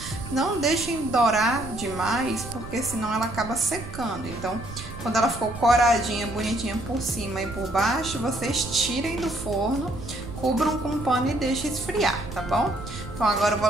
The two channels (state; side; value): noise; right; rumble, 12 dB below the sound